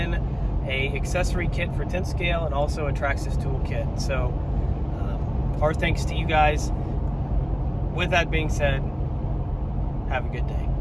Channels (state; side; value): identical; both; correlation 1.00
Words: a accessory kit for 10 scale and also a Traxxas tool kit. So our thanks to you guys. With that being said, have a good day.